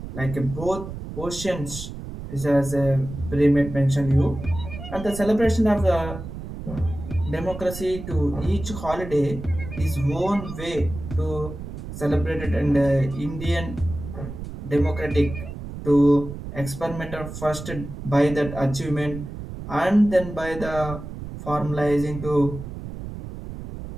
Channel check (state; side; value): noise; right; rumble, 10 dB below the sound